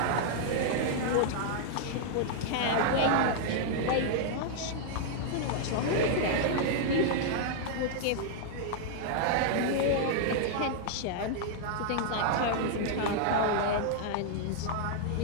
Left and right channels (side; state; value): both; different; correlation -0.01